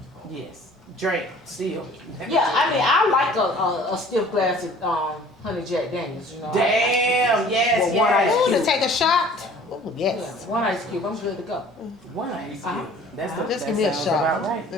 Yes. Drink, still. Yeah, I mean, I like a stiff glass of honey Jack Daniels. You know. Damn, yes, Well, one yes. Ooh, to take a shot. Ooh, yes. Yeah, one ice cube. I'm good to go. One ice cube. Uh-huh. That's the, Just that give me a sounds shot. about right.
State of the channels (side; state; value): both; normal; correlation 0.50